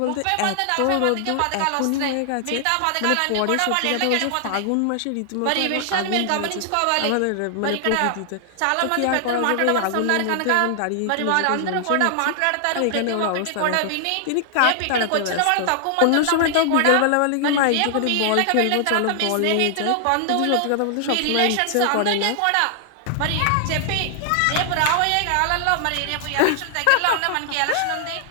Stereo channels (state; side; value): different; both; correlation 0.00